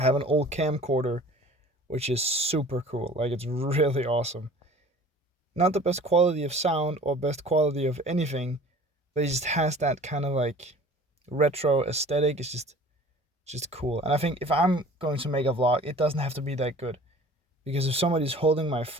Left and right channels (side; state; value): both; normal; correlation 0.46